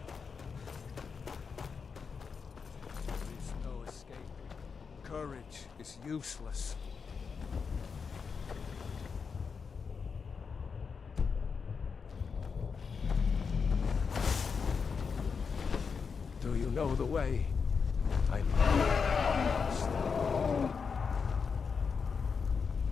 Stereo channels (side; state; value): right; quieter; 5.6 dB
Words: There is no escape. Courage is useless. Do you know the way? I'm lost.